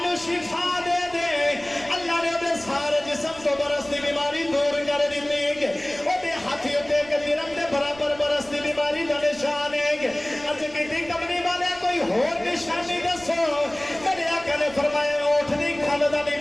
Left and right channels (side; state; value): right; noise; rumble, 21 dB below the sound